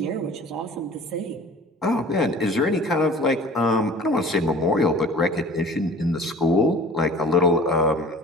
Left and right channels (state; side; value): normal; both; correlation 0.45